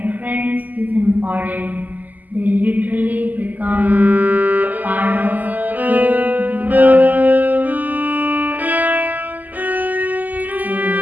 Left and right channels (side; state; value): left; late; 0.082 ms